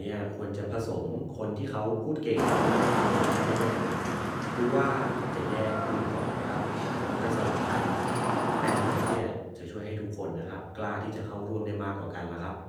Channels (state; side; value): identical; both; correlation 1.00